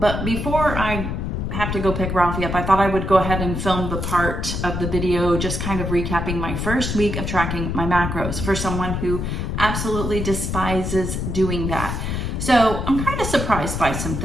before I have to go pick Ralphie up, I thought I would go ahead and film the part of the video just kind of recapping my first week of tracking my macros for someone who absolutely despises doing that. So I'm kind of surprised by some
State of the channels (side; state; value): left; noise; rumble, 3 dB below the sound